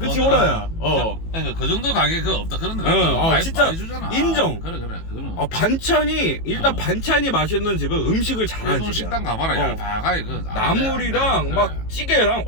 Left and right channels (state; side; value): late; right; 18 ms